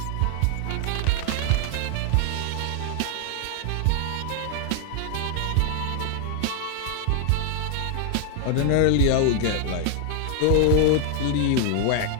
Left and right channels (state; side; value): different; both; correlation 0.00